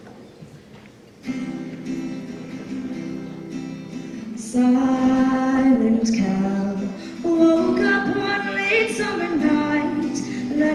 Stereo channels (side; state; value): both; identical; correlation 1.00